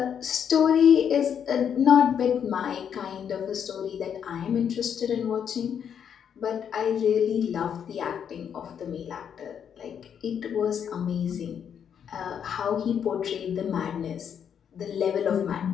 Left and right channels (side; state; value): right; quieter; 8.1 dB